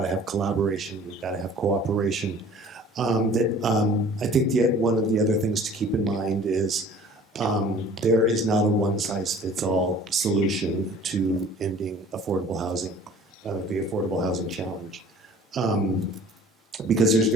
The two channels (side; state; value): both; normal; correlation 0.49